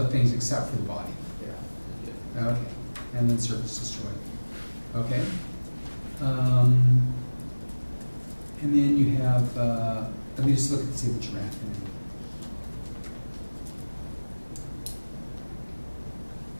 things except for the body. Yeah. Okay, and then surface destroyed. Okay. And then you have, let me just look and see what you're after.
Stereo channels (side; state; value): both; inverted; correlation -1.00